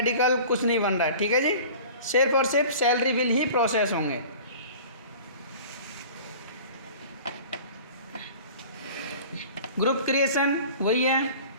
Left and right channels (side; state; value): both; inverted; correlation -0.41